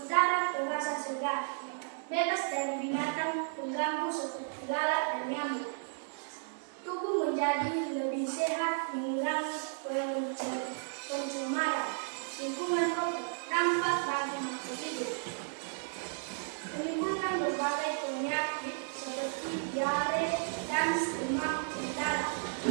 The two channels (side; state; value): left; silent; 55 dB below the other